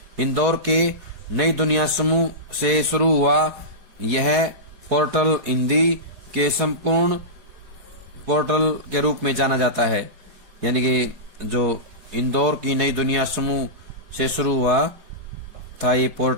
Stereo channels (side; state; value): left; late; 4.7 ms